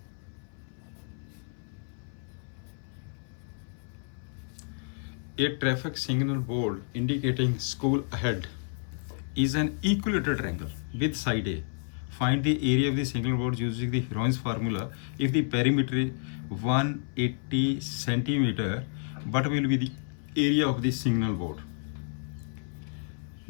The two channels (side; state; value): right; silent; 58 dB below the other